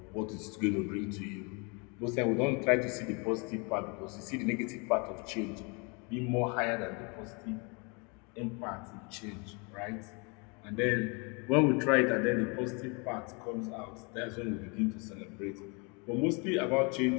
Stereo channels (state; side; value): quieter; right; 32.1 dB